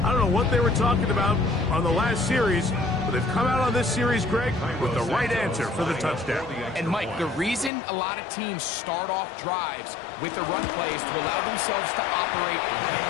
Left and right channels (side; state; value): right; drops out; at 7.7 s